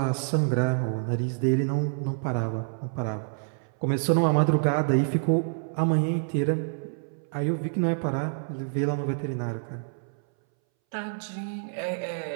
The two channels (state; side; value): silent; left; 60 dB below the other